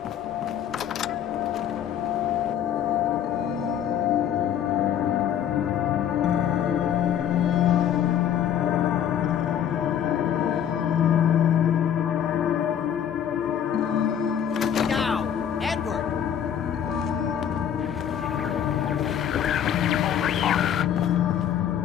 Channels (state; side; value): quieter; right; 9.4 dB